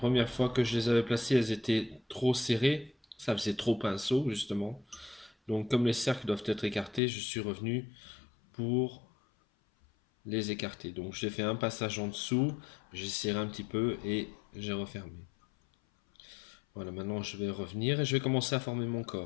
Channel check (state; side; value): drops out; right; at 7.0 s